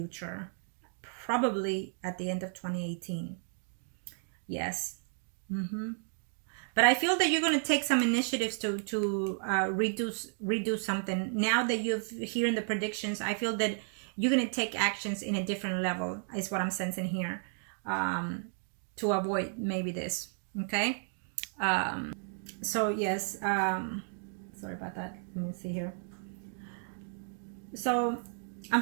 Probably at the end of 2018. Yes. But I feel that you're going to take some initiatives to redo something. Now that you've hearing the predictions, I feel that you're going to take actions in a different level, is what I'm sensing here, to avoid maybe this. Okay. So yes, sorry about that. Let me see here. So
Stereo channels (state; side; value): silent; left; 56 dB below the other